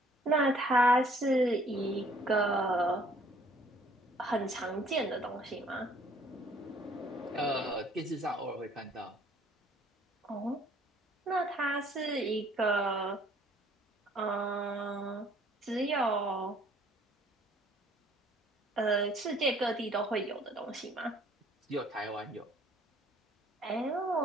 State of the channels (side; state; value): both; normal; correlation 0.59